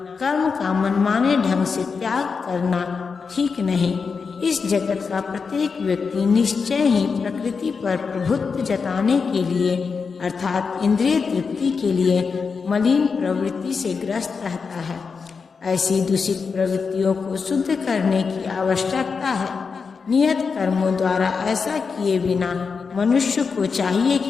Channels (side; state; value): right; quieter; 5.3 dB